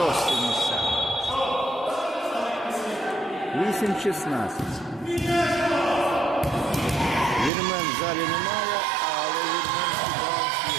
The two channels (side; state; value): left; drops out; at 7.5 s